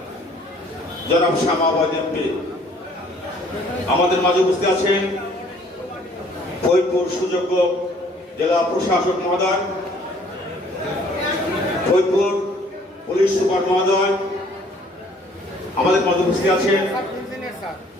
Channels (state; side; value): normal; both; correlation 0.58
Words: জনাব শামা আওয়াজ এমপি, আমাদের মাঝে উপস্থিত আছেন ফরিদপুর সুযোগ্য জেলা প্রশাসক মহোদয়, ফরিদপুর পুলিশ সুপার মহোদয়, আমাদের মাঝে উপস্থিত আছেন